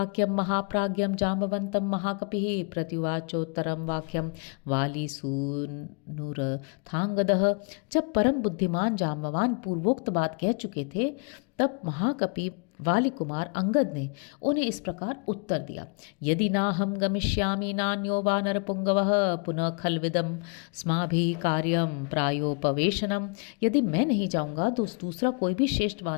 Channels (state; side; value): quieter; right; 38.1 dB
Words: महाप्राज्ञम जाम्बवंतम महाकपिः प्रत्युवाचोत्तरम वाक्यम वालीसूनुरथांगदः। जब परम बुद्धिमान जाम्बवान पूर्वोक्त बात कह चुके थे, तब महाकपि वाली कुमार अंगद ने उन्हें इस प्रकार उत्तर दिया। यदि नाहं गमिष्यामि नान्यो वानरपुंगवः पुनः खल्विदं स्माभिः कार्यं प्रायोपवेशनम। यदि मैं नहीं जाऊंगा तो दूसरा कोई भी श्रेष्ठ